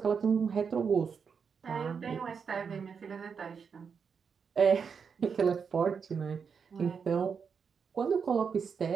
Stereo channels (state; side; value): quieter; left; 6.2 dB